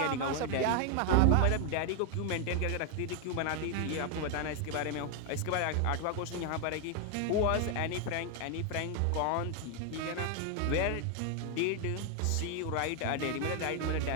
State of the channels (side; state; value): both; different; correlation 0.01